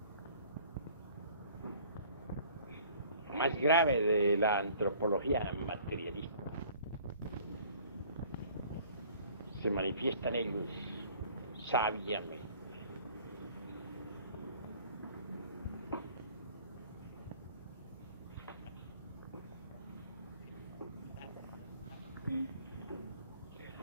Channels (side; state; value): both; inverted; correlation -0.52